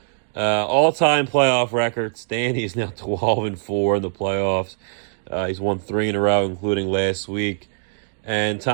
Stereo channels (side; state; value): left; silent; digital silence